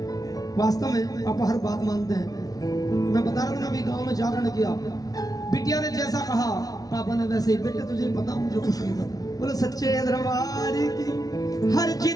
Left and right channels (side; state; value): right; late; 0.18 ms